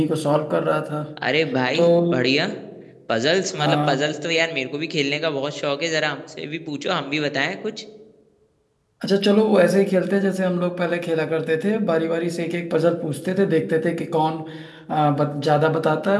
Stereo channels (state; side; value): identical; both; correlation 1.00